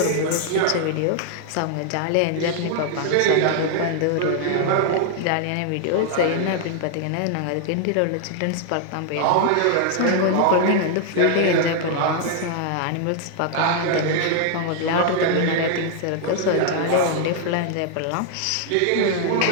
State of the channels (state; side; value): different; both; correlation 0.00